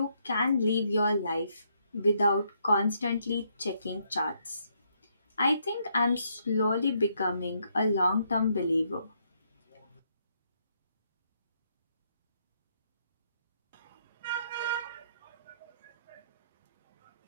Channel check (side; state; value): both; inverted; correlation -0.74